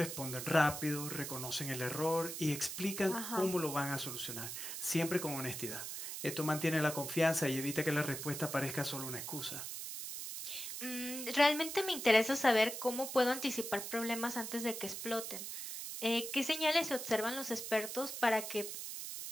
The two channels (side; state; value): right; noise; hiss, 6 dB below the sound